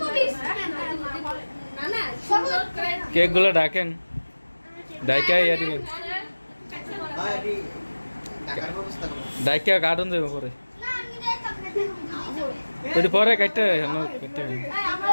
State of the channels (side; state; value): both; inverted; correlation -1.00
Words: প্লিজ না না কেক গুলো ডাকেন ডাইকা ইয়া দিবেন ডাইকা কাটুন দেব পরে ওই পরে কাটতে কাটতে